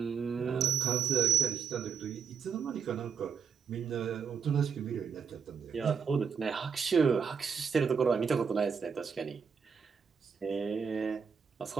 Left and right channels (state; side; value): quieter; left; 6.5 dB